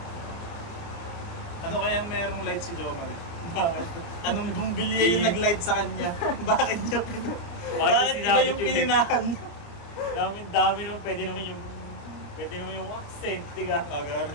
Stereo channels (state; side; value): late; right; 30 ms